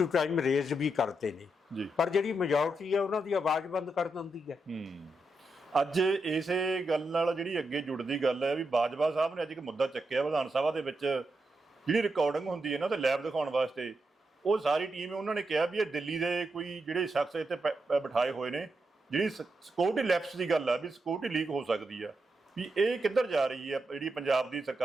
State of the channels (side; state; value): both; normal; correlation 0.85